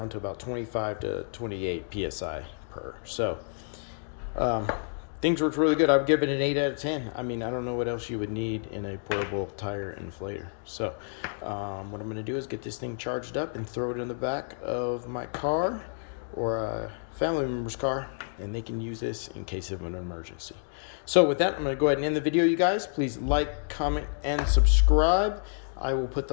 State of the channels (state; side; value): silent; right; digital silence